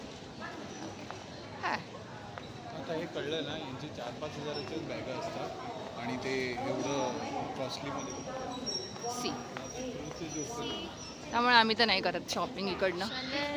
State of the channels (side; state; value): both; identical; correlation 1.00